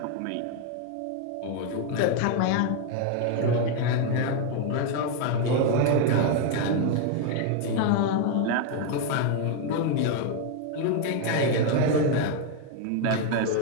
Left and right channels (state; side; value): different; both; correlation 0.01